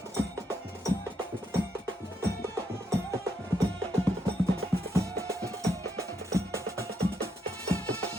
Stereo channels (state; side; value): normal; both; correlation 0.77